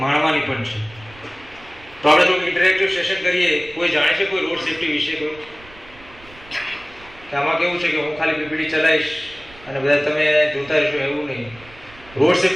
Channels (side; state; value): right; noise; rumble, 23 dB below the sound